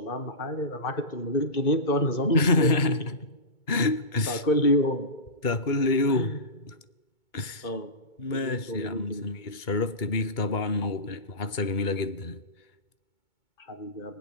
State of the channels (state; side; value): late; right; 2.2 ms